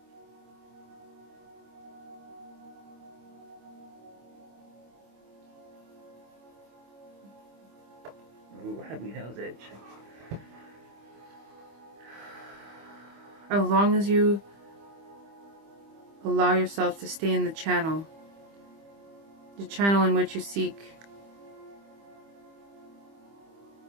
Ooh, heavy nose itch. As long as you allow yourself to stay in the channel in which you seek.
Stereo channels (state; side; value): late; left; 25 ms